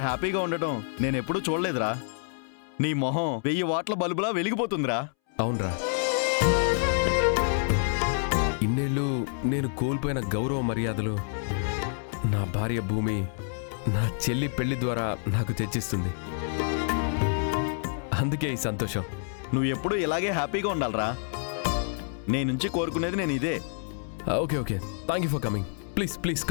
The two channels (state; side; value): silent; right; 59 dB below the other